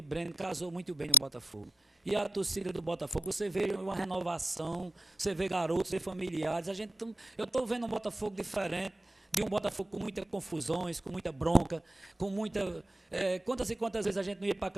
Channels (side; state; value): both; normal; correlation 0.77